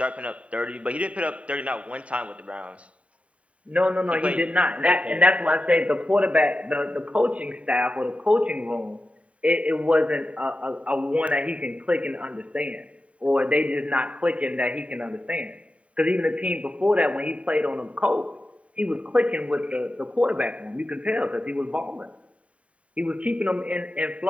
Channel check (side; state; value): left; late; 0.065 ms